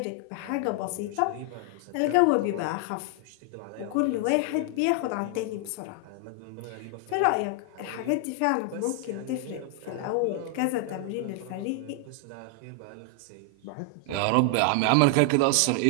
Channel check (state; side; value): different; both; correlation 0.00